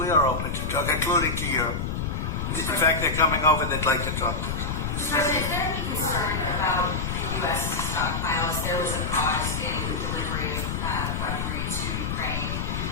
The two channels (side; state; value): left; noise; rumble, 2 dB below the sound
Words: are open to talk, including to Europe. In fact, they're coming over. They'd like to talk to us. Mr. President, is there any concern about the U.S. stockpiles? There was a pause in the delivery of weaponry to Ukraine